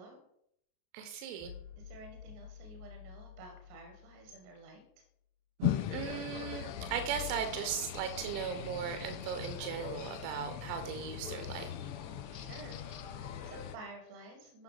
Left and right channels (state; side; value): late; left; 28 ms